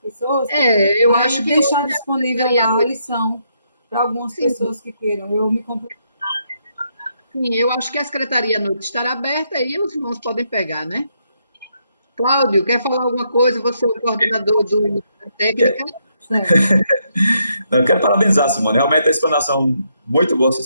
Eu acho que deixar disponível lá a lição para algumas pessoas que queiram. Eu me comprometo. Sim, eu acho que a secretaria à noite estará aberta e os irmãos podem pegar, né? Cláudio, quer falar alguma coisa? Você é o coordenador da técnica? Não, eu quero parabenizar, Simone. Realmente a explanação, muito boa essa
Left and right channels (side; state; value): both; inverted; correlation -0.77